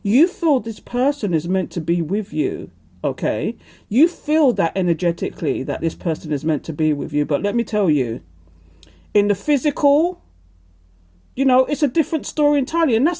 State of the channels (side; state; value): both; identical; correlation 1.00